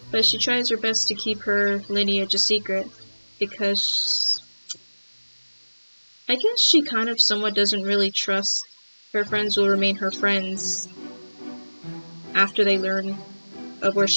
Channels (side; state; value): both; inverted; correlation -1.00